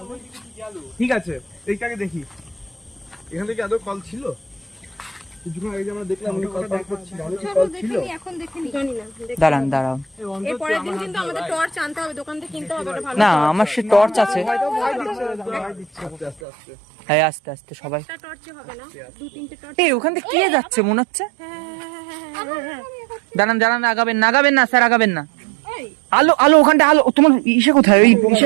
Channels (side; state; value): left; drops out; at 16.4 s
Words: ঠিক আছে, এইটাকে দেখি এখান থেকে আদৌ কল ছিল? কিছুক্ষণ আগে যে আমরা দেখলাম উনি কল করছিল, চলো দেখে নি, এখন দেখে নি, জানি না। দাঁড়ান দাঁড়াও, এই পরের দিন কিন্তু আমাদের টর্চ আনতে হবে, দোকান থেকে কিনতে হবে, ওটা ভালো। না আমার সে টর্চ আছে। আস্তে আস্তে আস্তে হ্যাঁ আস্তে আস্তে সবাই। একটা টর্চে হবে না, দু তিনটে টর্চ। এই ওখান থেকে কে যাচ্ছে মনে হচ্ছে। হ্যাঁ। দাঁড়ান দাঁড়ান, আগাবেন না আগাবেন না স্যার, আগাবেন না। এই আলো আলো, ওখানটা আলো। তোমার ইসে কোথায়? ওই